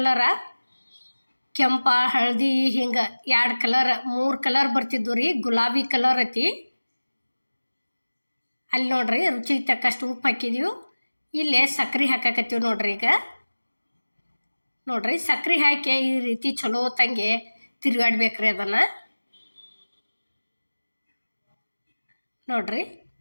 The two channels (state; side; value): inverted; both; correlation -1.00